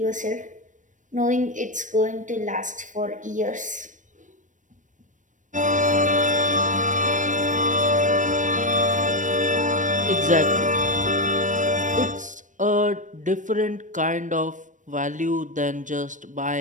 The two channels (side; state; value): left; late; 0.37 ms